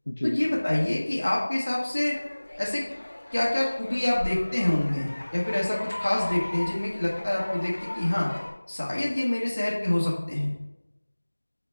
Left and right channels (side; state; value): both; inverted; correlation -1.00